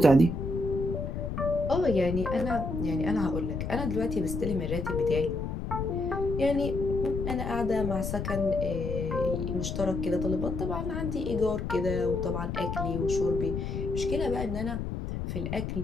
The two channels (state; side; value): noise; left; rumble, 4 dB below the sound